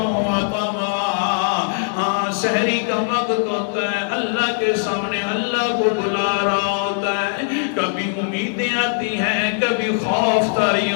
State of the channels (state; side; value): silent; right; digital silence